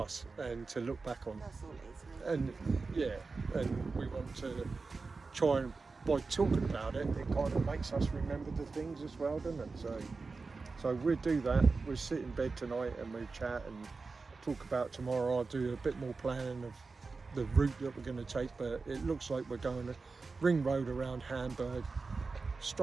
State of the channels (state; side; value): quieter; left; 4.2 dB